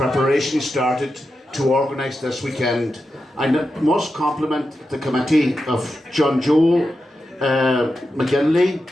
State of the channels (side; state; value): both; normal; correlation 0.89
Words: started to organise this weekend. I must compliment the committee of John Joe McGinley,